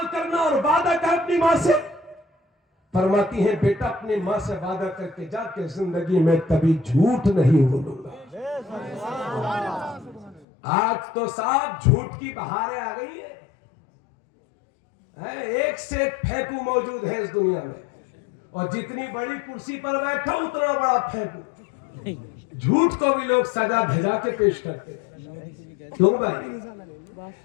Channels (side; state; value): right; drops out; at 10.5 s